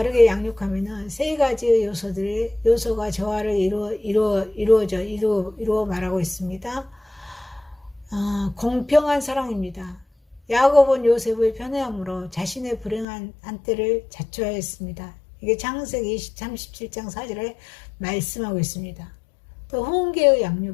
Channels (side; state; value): right; drops out; at 13.1 s